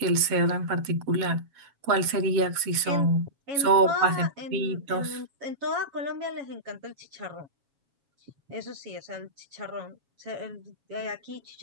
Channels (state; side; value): late; left; 7.3 ms